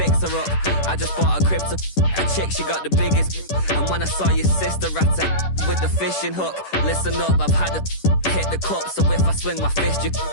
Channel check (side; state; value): right; late; 10 ms